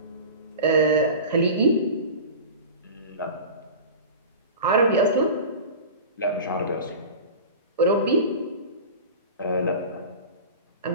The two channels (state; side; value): inverted; both; correlation -0.34